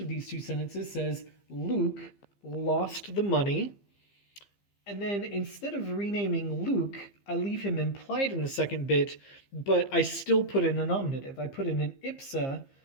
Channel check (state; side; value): late; right; 15 ms